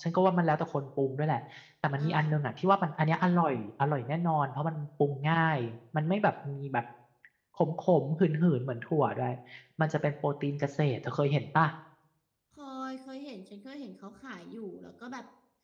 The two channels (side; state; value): both; identical; correlation 1.00